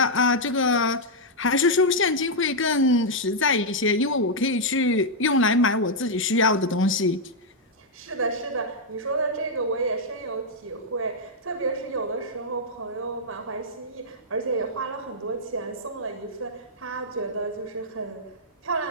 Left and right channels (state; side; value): normal; both; correlation -0.04